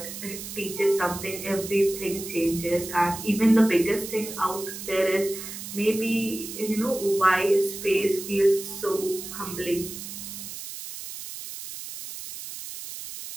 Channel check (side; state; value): right; noise; hiss, 10 dB below the sound